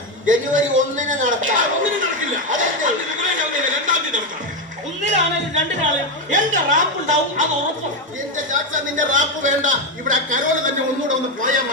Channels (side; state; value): both; normal; correlation 0.09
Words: ജനുവരി 1-ന് നടത്താം. ഒന്നിനും നടക്കില്ല. രണ്ടാം തീയതി നടക്കാം. ഒന്നിലാണെങ്കിലും രണ്ടിനാളും എന്റെ റാപ്പ് ഉണ്ടാവും, അത് ഉറപ്പും. എന്റെ ചാച്ച, നിന്റെ റാപ്പ് വേണ്ട. ഇവിടെ കരോള് തന്നെ ഒന്നുകൂടെ ഒന്ന് പോയാൽ